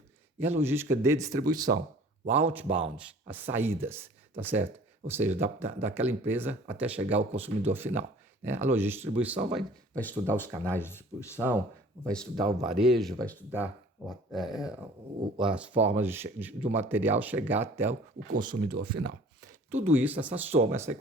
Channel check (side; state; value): both; normal; correlation 0.49